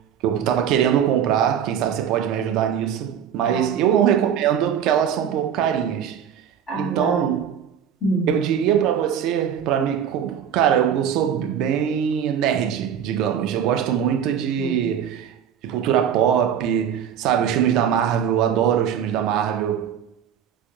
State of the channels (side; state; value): left; quieter; 8.7 dB